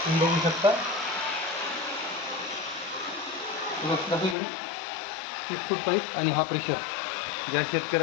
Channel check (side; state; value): right; drops out; at 4.4 s